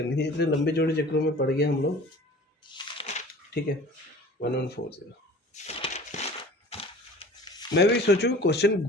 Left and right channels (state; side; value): normal; both; correlation 0.44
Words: थी, इतने लंबे चौड़े चक्रों में पड़ गए हम लोग। ठीक है, 1140, मैं भी सोचूं क्वेश्चन